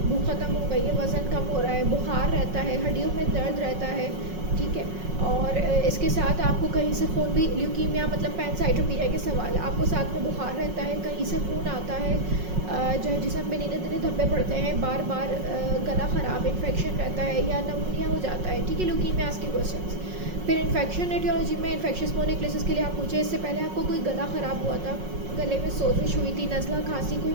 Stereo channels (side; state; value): left; late; 5.5 ms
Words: भूख ख़त्म हो गई है, वज़न कम हो रहा है, बुखार रहता है, हड्डियों में दर्द रहता है, ठीक है। और इसके साथ आपको कहीं से खून भी, ल्यूकीमिया मतलब पैनसाइटोपीनिया के सवाल है, आपको साथ में बुखार रहता है, कहीं से खून आता है, जो है जिसम में नीले नीले धब्बे पड़ते हैं, बार बार गला ख़राब, इन्फेक्शन रहता है या नमूनिया हो जाता है, ठीक है, ल्यूकीमियास के क्वेश्चंस। फिर इन्फेक्शन एटियोलॉजी में इन्फेक्शियस मोनोन्यूक्लियोसिस के लिए आप पूछे, इससे पहले आपको कोई गला ख़राब हुआ था, गले में सोजिश हुई थी, नज़ला, खांसी, कोई